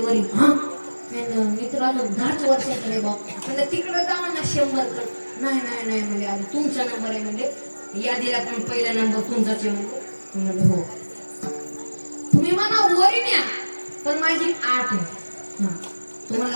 हा मी तर आलो 10 वर्षाकडे बाप म्हणजे तिकडे जावा ना 100 कड. नाही नाही नाही म्हणजे आधी तुमचा नंबर आहे म्हणजे यादीला पण पहिला नंबर तुमचाच आहे म्हणजे हो तुम्ही मला वरी न्या पण माझी 8 आहे. हा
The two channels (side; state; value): both; inverted; correlation -1.00